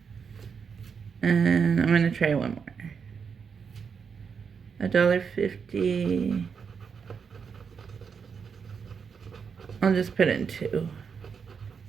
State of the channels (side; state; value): left; quieter; 6.3 dB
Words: And I'm going to try one more. $1.50. I'll just put in 2.